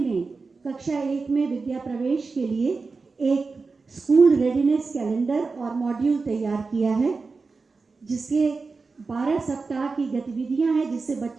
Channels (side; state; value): left; quieter; 4.3 dB